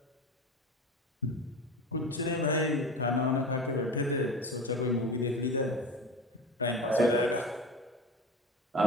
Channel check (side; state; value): both; normal; correlation 0.30